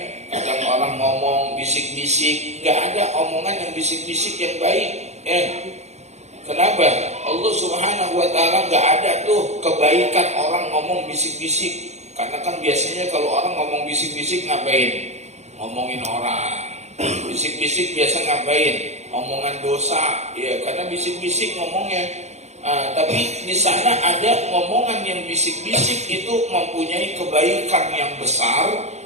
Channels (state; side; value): late; left; 0.32 ms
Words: kadang orang ngomong bisik-bisik, gak ada omongan yang bisik-bisik yang baik. Kenapa? Allah Subhanahu wa Ta'ala gak ada tuh kebaikan orang ngomong bisik-bisik. Karena kan biasanya kalau orang ngomong bisik-bisik ngapain? Ngomongin orang. Bisik-bisik biasa ngapain? Omongan dosa. Ya, karena bisik-bisik ngomongnya. Tapi di sana ada ngomongan yang bisik-bisik itu mempunyai kebaikan yang besar